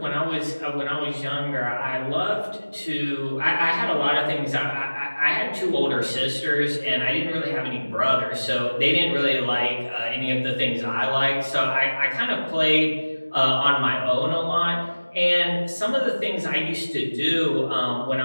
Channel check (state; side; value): inverted; both; correlation -1.00